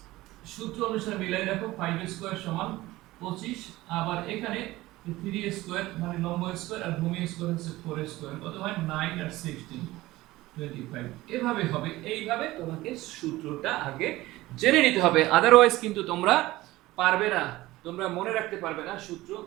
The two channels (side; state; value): left; quieter; 18.1 dB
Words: সূত্র অনুসারে মিলাই দেখো, 5 স্কয়ার সমান 25, আবার এখানে 3 স্কয়ার মানে লম্ব স্কয়ার আর ভূমি স্কয়ার হচ্ছে 4 স্কয়ার, কত হয় 9 আর 16 25। এভাবে হবে, এইভাবে তোমাকে সূত্রটা আগে জেনে নিতে হবে, আদারওয়াইজ কিন্তু তোমরা পারবে না, তোমরা মনে রাখতে পারবে না, সূত্র